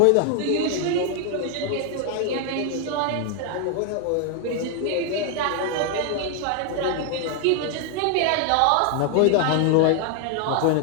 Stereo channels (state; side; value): different; both; correlation 0.00